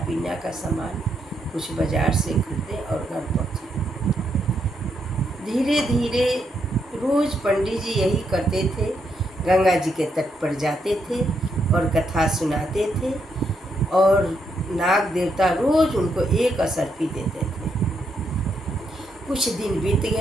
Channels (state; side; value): normal; both; correlation 0.78